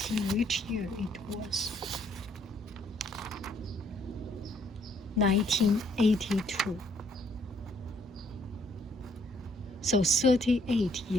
which year it was. 1982. So 38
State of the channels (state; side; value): normal; both; correlation 0.67